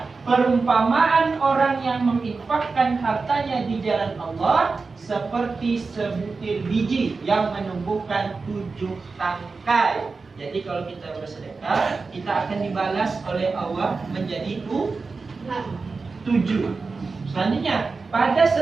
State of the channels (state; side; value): quieter; left; 4.3 dB